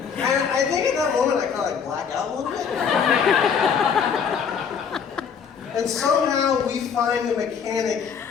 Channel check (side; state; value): right; quieter; 6.8 dB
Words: And I think at that moment I kind of black out a little bit. And somehow we find a mechanic